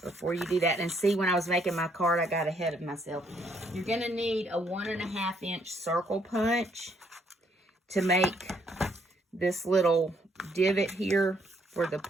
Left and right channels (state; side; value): normal; both; correlation 0.69